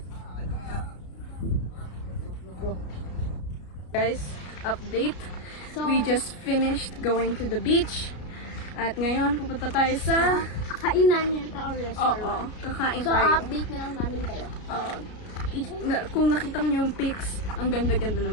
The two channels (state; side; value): late; right; 33 ms